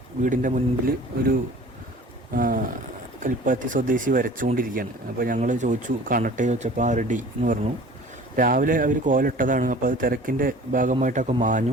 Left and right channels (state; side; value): normal; both; correlation 0.45